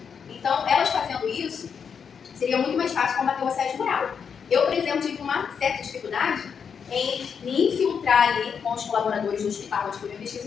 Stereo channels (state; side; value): quieter; right; 6.7 dB